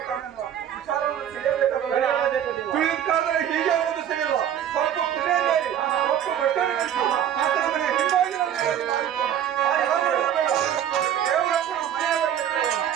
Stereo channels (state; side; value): quieter; left; 9.9 dB